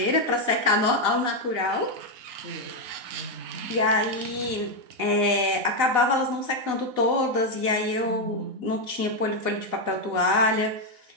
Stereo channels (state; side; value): late; left; 4.0 ms